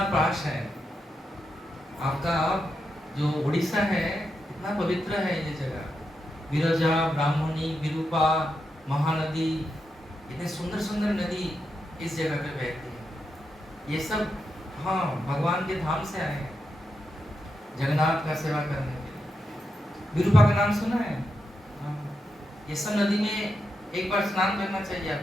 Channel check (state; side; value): normal; both; correlation 0.85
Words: पास है, आपका जो उड़ीसा है इतना पवित्र है ये जगह। विरजा, ब्राह्मणी, विरूपा, महानदी, इतने सुंदर सुंदर नदी इस जगह पे बहती है। ये सब हाँ भगवान के धाम से आए हैं, जगन्नाथ का सेवा करने के लिए। विरूपा का नाम सुना है? हाँ। ये सब नदी में एक बार स्नान करना चाहिए